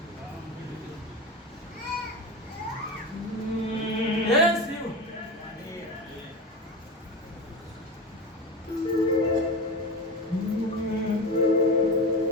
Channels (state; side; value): normal; both; correlation 0.24